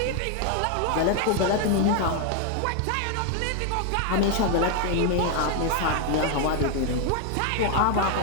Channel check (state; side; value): different; both; correlation 0.00